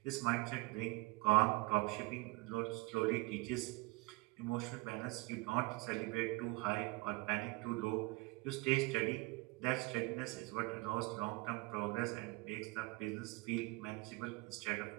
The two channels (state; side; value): quieter; left; 23.5 dB